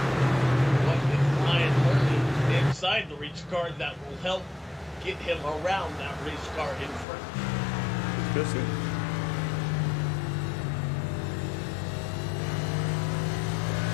Inside the race car that will help get him around that race car in front. Let's go see.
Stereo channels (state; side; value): drops out; right; at 7.1 s